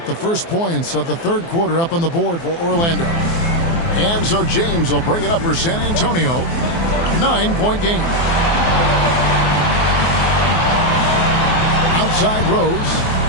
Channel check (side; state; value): right; late; 24 ms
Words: the first points of the third quarter up on the board for Orlando. And so James will bring it up for San Antonio. 9-point game. Outside Rose.